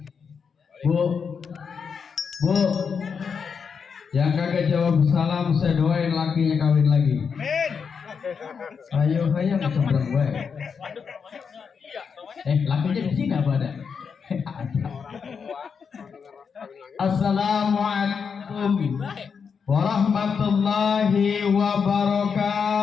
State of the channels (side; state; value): right; quieter; 6.2 dB